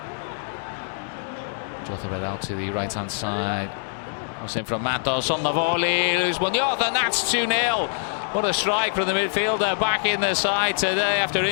Jota it out to the right hand side. Was in from Matos on the volley. Luis Muñoz, and that's 2-0. What a strike from the midfielder, back in the side today after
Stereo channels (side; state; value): right; silent; 62 dB below the other